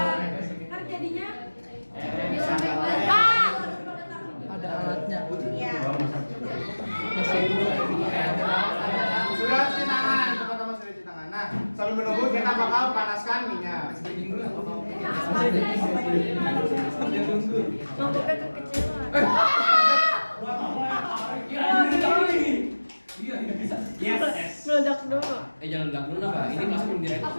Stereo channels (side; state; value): both; inverted; correlation -1.00